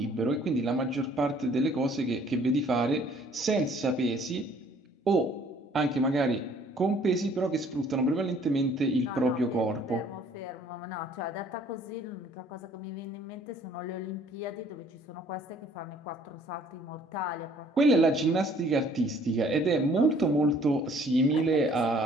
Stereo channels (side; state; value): both; normal; correlation 0.58